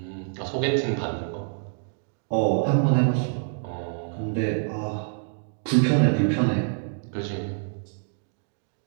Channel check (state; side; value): silent; left; digital silence